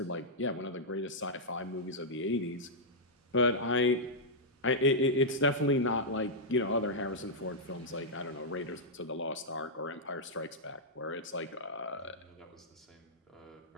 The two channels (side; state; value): both; normal; correlation -0.08